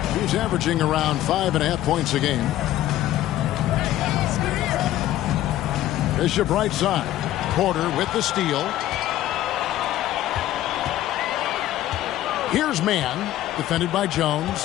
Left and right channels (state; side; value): quieter; right; 13.8 dB